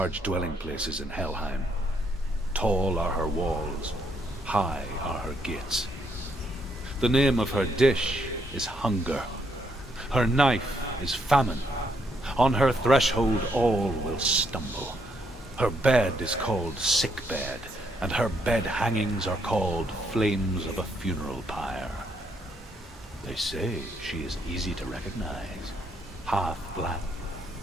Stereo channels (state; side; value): normal; both; correlation 0.74